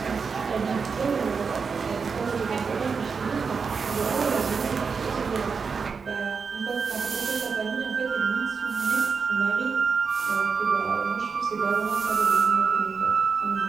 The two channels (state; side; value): quieter; left; 5.4 dB